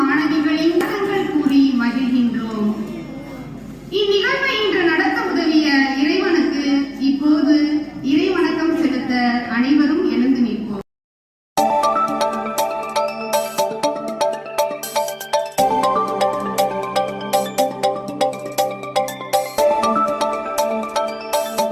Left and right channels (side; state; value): both; identical; correlation 1.00